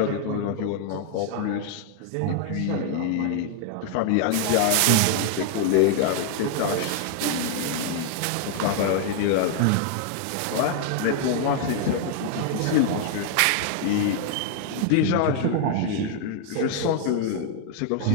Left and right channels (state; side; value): different; both; correlation 0.00